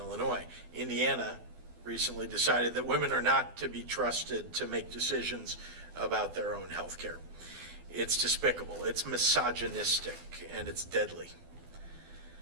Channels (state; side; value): late; left; 12 ms